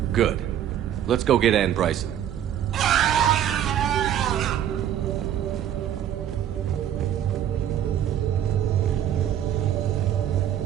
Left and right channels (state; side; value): quieter; left; 10.5 dB